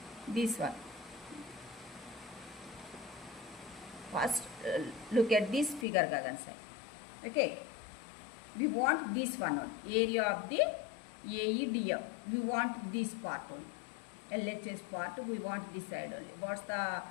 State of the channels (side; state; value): right; drops out; at 5.9 s